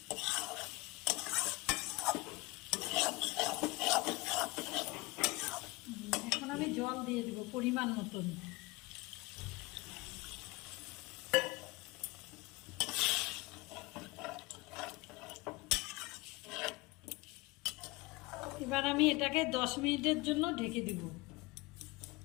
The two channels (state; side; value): quieter; right; 23.9 dB